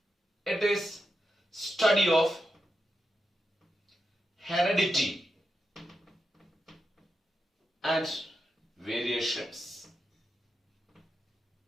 it is study of heredity and variations.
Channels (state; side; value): normal; both; correlation 0.87